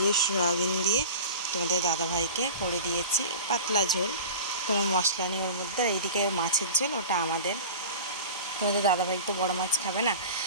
সয়াবিন দিয়ে তোমাদের দাদাভাইকে করে দিয়েছি পাতলা ঝোল, কোনো মশলা নেই ওর মধ্যে। আর এইদিকে মাছের ঝোল, ওটা আমাদের। তোমাদের দাদাভাই তো বড় মাছ খাবে না,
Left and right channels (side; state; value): both; inverted; correlation -0.35